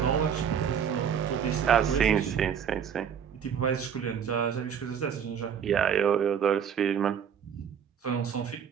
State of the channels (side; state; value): left; quieter; 7.9 dB